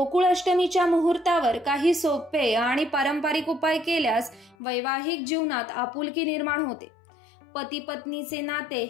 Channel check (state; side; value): drops out; right; at 4.5 s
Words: मुहूर्तावर काही सोपे आणि पारंपरिक उपाय केल्यास वैवाहिक जीवनात आपुलकी निर्माण होते। पती पत्नीचे नाते